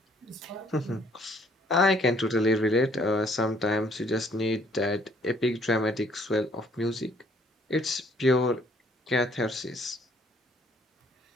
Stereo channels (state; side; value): normal; both; correlation 0.62